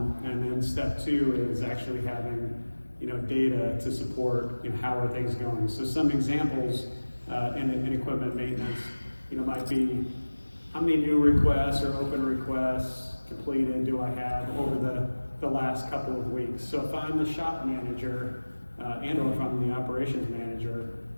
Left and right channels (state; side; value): inverted; both; correlation -1.00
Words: and then step two is actually having, data to support, how are things going. So some examples in equipment maintenance, might be how many new requests or open requests completed do I have over the last couple of weeks. So if I'm the shop manager and or if I'm the operations manager,